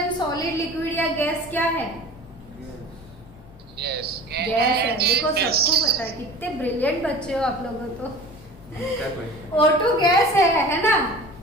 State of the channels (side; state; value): both; normal; correlation 0.40